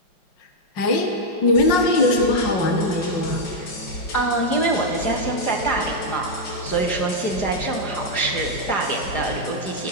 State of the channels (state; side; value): late; right; 4.9 ms